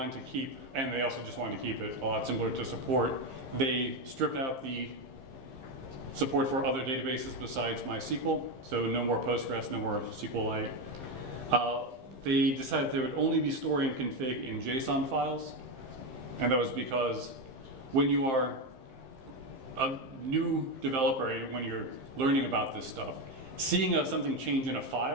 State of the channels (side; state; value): left; late; 15 ms